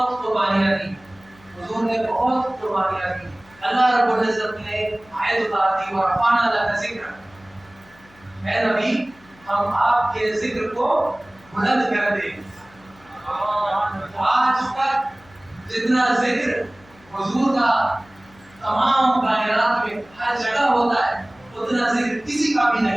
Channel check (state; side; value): noise; left; hum, 27 dB below the sound